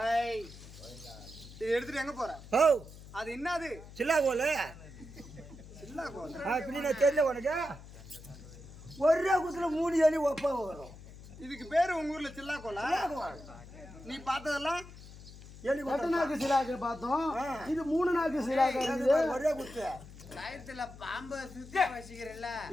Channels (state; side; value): noise; left; hum, 17 dB below the sound